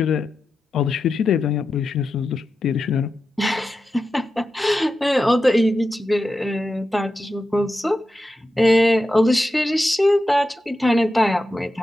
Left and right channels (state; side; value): normal; both; correlation 0.90